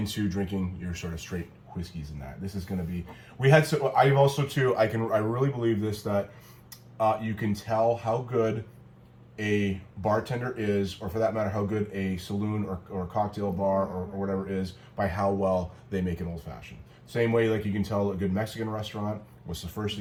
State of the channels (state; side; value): identical; both; correlation 1.00